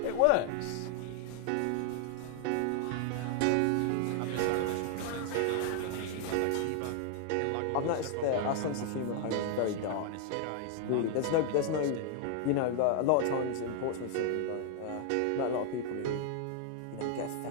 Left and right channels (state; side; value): different; both; correlation 0.00